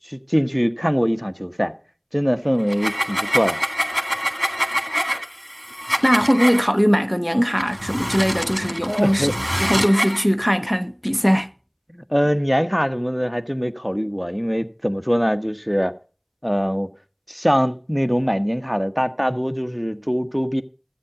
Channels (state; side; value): identical; both; correlation 1.00